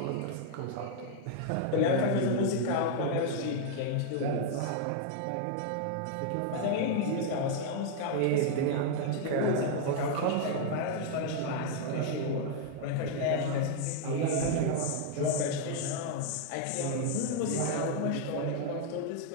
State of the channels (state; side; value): different; both; correlation 0.00